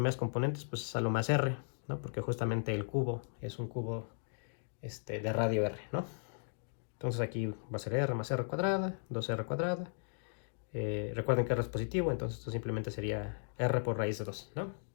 componentes pues es a lo más r, ¿no? Porque justamente el cubo es un cubo de radio r, ¿no? Entonces aquí va a ser r más r cuadrada, 2r cuadrada. Recuerden que r es positivo, entonces esto simplemente sería r por raíz de 2, ¿no?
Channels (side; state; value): right; silent; digital silence